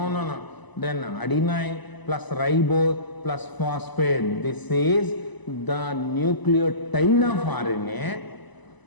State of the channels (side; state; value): right; late; 1.0 ms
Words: Then adenine plus ribose plus phosphate. This is the nucleotide of RNA.